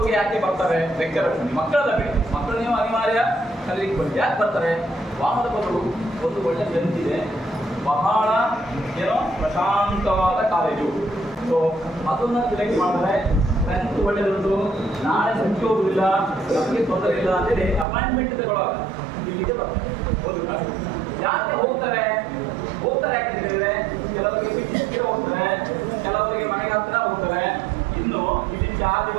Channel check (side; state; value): left; drops out; at 17.9 s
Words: ಯಾಕೆ ಬರ್ತಾರೆ ಲೆಕ್ಚರರ್ಸ್? ಮಕ್ಕಳದ ಬೇಡ, ಮಕ್ಕಳು ನೀವು ಅನಿವಾರ್ಯ ಕಲಿಲಿಕ್ಕೆ ಬಂದು ಯಾಕೆ ಬರ್ತಾರೆ? ವಾಮದ ಬದುಕು ಒಂದು ಒಳ್ಳೆ ಬೆಂಚಿದೆ, ಬಹಳ ಏನೋ ಪ್ರಶಾಂತವಾದ ಕಾಲೇಜು. ಸೊ ಅದನ್ನ ಸೆಲೆಕ್ಟ್ ಮಾಡಿದ್ರೆ ಸ್ಟ್ರೆಂತ್ ಒಳ್ಳೆದುಂಟು, ನಾಳೆ ಸಂಖ್ಯೆ ಹೋಗುದಿಲ್ಲ, ನಮಗೆ ತೊಂದರೆ ಇಲ್ಲ ಅಂತೇಳಿ ಅಪಾಯಿಂಟ್ಮೆಂಟ್ ತಗೊಳ್ಳುವಾಗ ಇಲ್ಲಿಗೆ ಬರ್ತಾರೆ. ಯಾಕೆ ಹೋಗ್ತಾರೆ ಯಾಕೆ ಹೇಳಿದ್ರೆ, ಕೆಲವರಿಗೆ ಬಿಟ್ಟಿಗೆ ಹೋಗ್ತಾರೆ, ಕೆಲವರಿಗೆ ಮನೆಗೆ ಹತ್ರ ಹೋಗ್ತಾರೆ. ಇನ್ನು ಇಲ್ಲಿ ಚಾರ್ಜ್